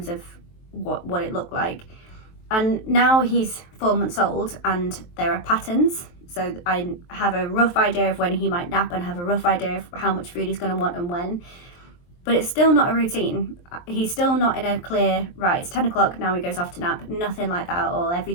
of what it looked like. And now he's 4 months old and there are patterns. So I have a rough idea of when he might nap and have a rough idea of how much food he's going to want and when. But it's still not a routine. He's still not in a clear, right, it's 10 o'clock, now he goes off to nap. Nothing like that at all. Every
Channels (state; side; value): late; right; 23 ms